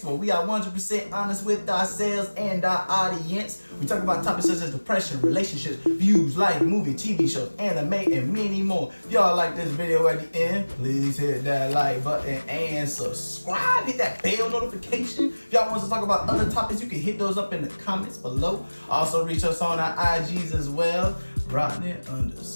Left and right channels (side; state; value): both; inverted; correlation -1.00